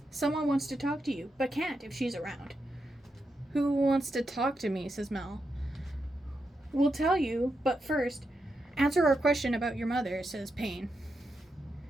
someone wants to talk to you, but can't if she's around. Who wants to talk to me, says Mal. We'll tell you, but first, answer our question about your mother, says Payne.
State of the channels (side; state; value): both; normal; correlation 0.85